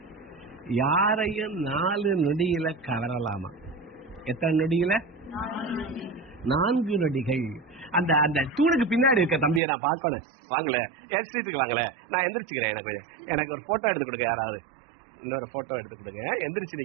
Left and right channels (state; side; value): drops out; left; at 9.6 s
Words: யாரையும் 4 நொடியில கவரலாமா? எத்தனை நொடியில? 4 நொடிகள். அந்த அந்த தூணுக்கு பின்னாடி இருக்க தம்பியை நான் பார்க்கணும். வாங்கல, என் சீட்டுக்கு வாங்கல, நான் எந்திரிச்சுக்கிறேன். எனக்கு ஒரு போட்டோ எடுத்து கொடுங்க. யாராவது இன்னொரு போட்டோ எடுத்து கொடுங்க. எந்திரிச்சு